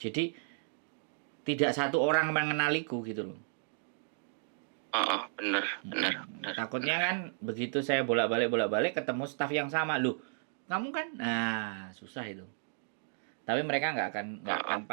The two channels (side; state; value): left; silent; digital silence